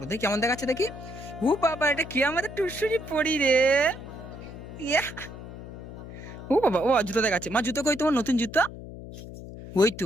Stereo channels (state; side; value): noise; left; hum, 12 dB below the sound